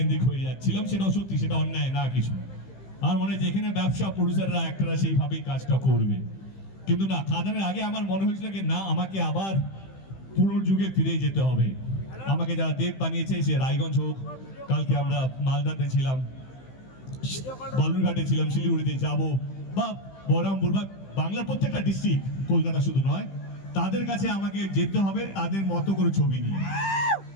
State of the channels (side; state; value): right; late; 15 ms